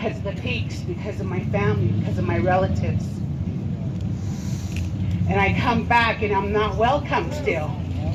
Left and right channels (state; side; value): identical; both; correlation 1.00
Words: of the peaks, because of my family, because of my relatives. And I come back and I'm not welcome still.